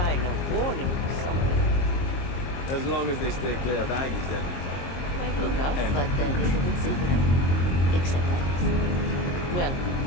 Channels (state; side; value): late; right; 22 ms